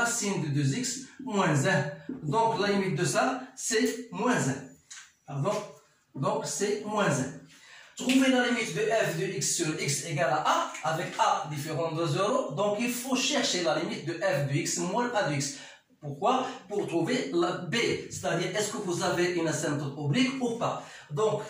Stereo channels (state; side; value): identical; both; correlation 1.00